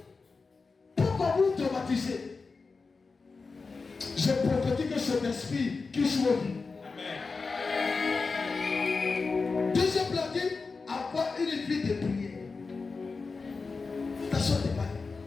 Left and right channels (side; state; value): right; quieter; 4.4 dB